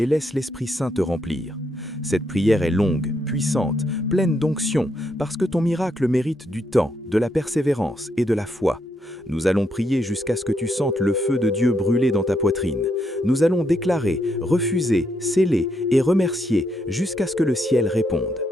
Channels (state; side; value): normal; both; correlation 0.78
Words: laisse l'Esprit Saint te remplir. Cette prière est longue, puissante, pleine d'onction, parce que ton miracle mérite du temps, de la persévérance et de la foi. Nous allons prier jusqu'à ce que tu sentes le feu de Dieu brûler dans ta poitrine. Nous allons déclarer, refuser, sceller et remercier jusqu'à ce que le ciel réponde.